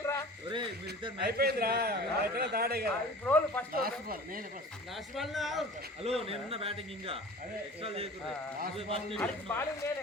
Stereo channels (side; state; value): both; normal; correlation 0.41